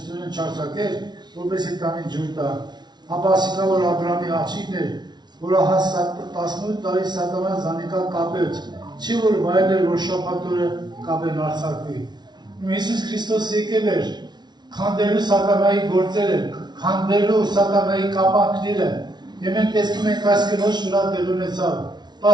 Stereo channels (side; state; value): left; late; 0.20 ms